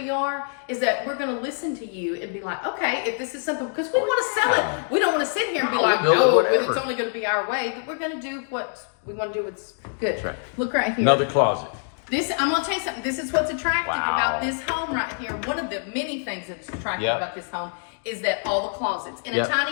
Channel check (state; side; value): silent; right; 62 dB below the other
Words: are is that we're going to listen to you and be like, okay, if this is something, because we want to sell it. We don't want to sit here and be like, no, it's only going to be our way. We're going to do what we want to do. What's good. That's right. Look right here. Another closet. I'm going to tell you something. This is what's attractive about this home right here. One of the many things that's attractive about this home is that all the closets. In a